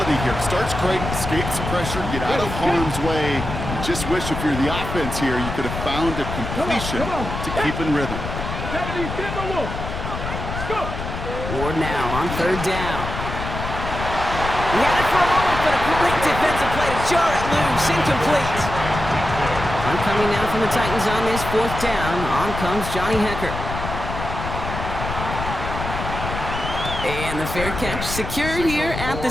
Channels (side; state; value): left; noise; rumble, 6 dB below the sound